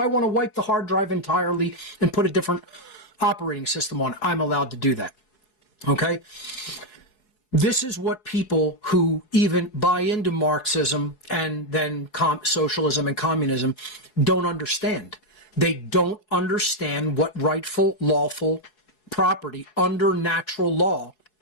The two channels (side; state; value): right; late; 4.7 ms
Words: want to wipe the hard drive entirely and put a different operating system on it, I'm allowed to do that. Okay? This is what people who even buy into Marxism and then socialism and communism don't understand. They don't understand what rightful, lawful property under natural law